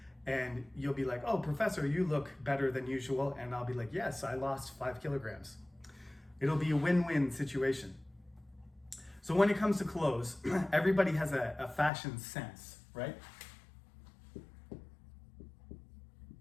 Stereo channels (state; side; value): drops out; right; at 11.9 s